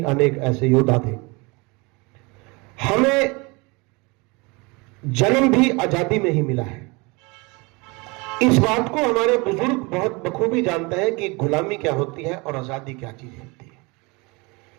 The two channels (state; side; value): quieter; left; 27.2 dB